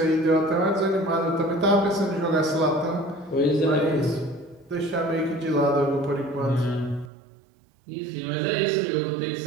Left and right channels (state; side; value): drops out; left; at 7.1 s